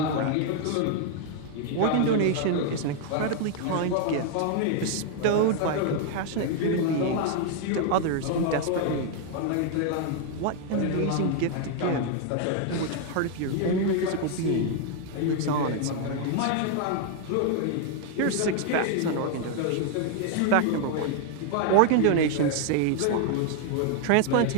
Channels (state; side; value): different; both; correlation 0.00